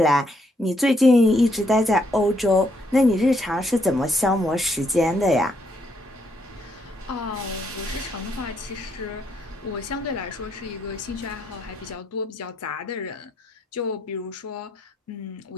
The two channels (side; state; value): both; normal; correlation 0.74